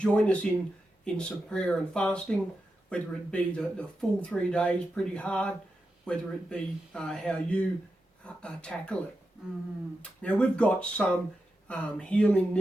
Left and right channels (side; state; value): both; normal; correlation 0.89